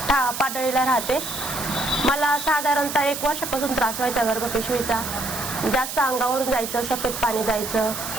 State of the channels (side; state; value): right; noise; hiss, 6 dB below the sound